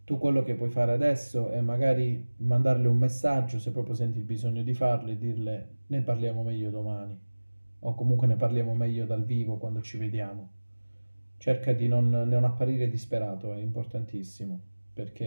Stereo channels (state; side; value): inverted; both; correlation -1.00